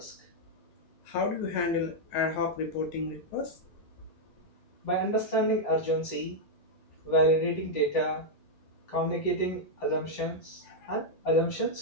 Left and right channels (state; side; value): late; right; 9.8 ms